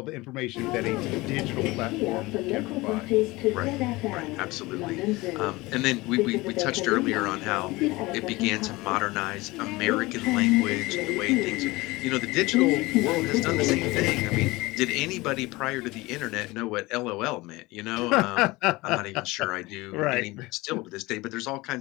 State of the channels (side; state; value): right; quieter; 21.5 dB